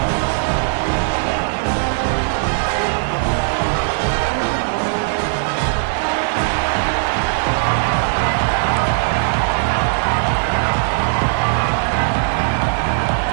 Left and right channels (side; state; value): left; silent; digital silence